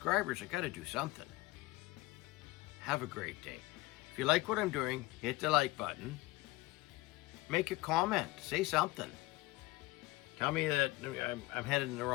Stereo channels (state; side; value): quieter; right; 20.5 dB